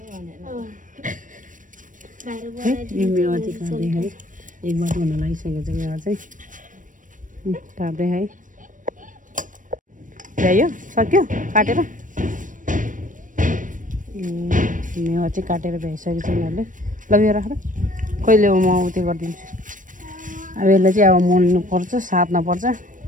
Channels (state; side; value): late; left; 0.38 ms